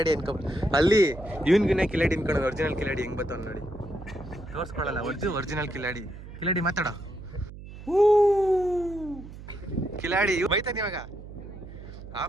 ಇನ್ಕೊಬಿಟ್ಟು ಅಲ್ಲಿ ಇವನ್ಗಿನ ಕಿಲಾಡಿ ಇನ್ಕೊಂಡು ಒರಿಜಿನಲ್ ಕಿಲಾಡಿ ಹೆಂಗ್ ಬರ್ತಾವ ನೋಡಿ. ತೋರಿಸ್ಕೊಳಲ್ಲ ಒರಿಜಿನಲ್ ಕಿಲಾಡಿ. ಮಾತಾಡೋ. ಕಿಲಾಡಿ ಬೈತಾನೆ ಇವಾಗ.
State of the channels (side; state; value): right; noise; hum, 14 dB below the sound